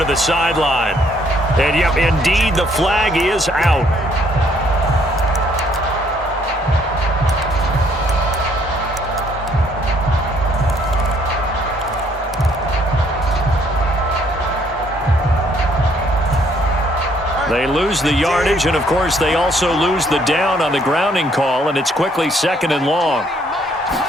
the sideline. And, yep, indeed, the flag is out. They lose the yardage, and, of course, they also lose the down on the grounding call, and it's quickly 2nd and long.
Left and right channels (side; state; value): both; normal; correlation 0.66